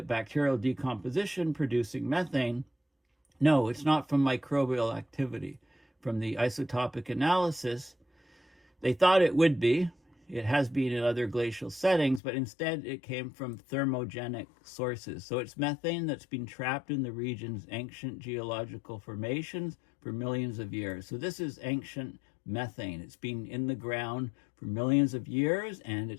bacterial decomposition producing methane. No, it's not from microbial activity. From the isotopic analysis, they thought it would be. It has been in other glacial settings, but instead it came from thermogenic sources. So it's methane that's been trapped in the region's ancient geological formations for millions of years. So this is ancient methane. It's been in the ground for millions of years, and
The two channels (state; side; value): drops out; right; at 12.2 s